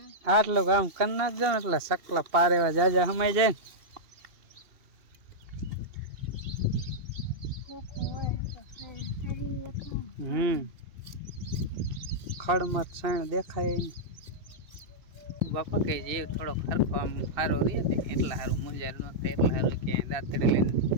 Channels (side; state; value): left; late; 2.7 ms